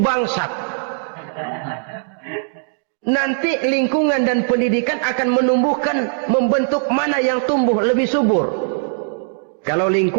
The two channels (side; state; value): left; silent; digital silence